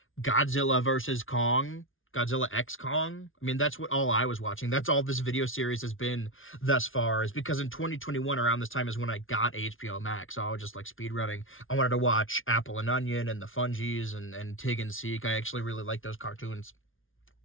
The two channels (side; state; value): right; late; 0.58 ms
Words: Godzilla vs. Kong, Godzilla X Kong. I mean, that's what all I was watching. That's all this video series has been thus far, is because in 2021, around this time, is when I got HBO Max. So I was just, like, speedrunning. I wanted to watch Apple and Onion and the Fungies and Tig and Seek. I actually really like those cartoons.